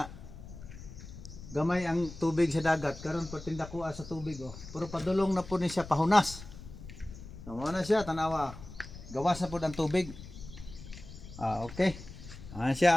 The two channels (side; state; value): left; noise; rumble, 14 dB below the sound